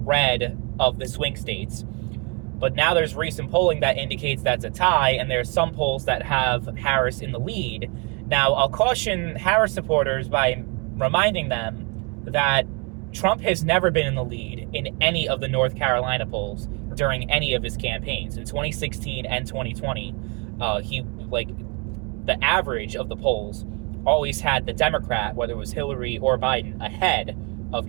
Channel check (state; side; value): quieter; left; 32.9 dB